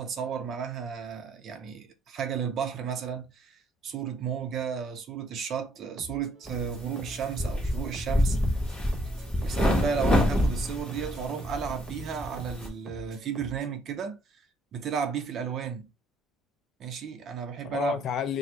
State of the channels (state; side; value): normal; both; correlation 0.66